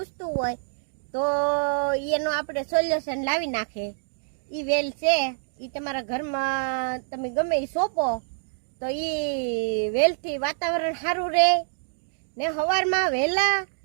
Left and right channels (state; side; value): silent; left; digital silence